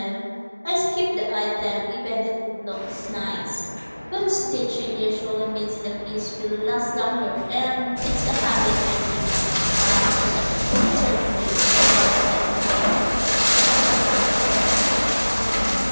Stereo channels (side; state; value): both; inverted; correlation -1.00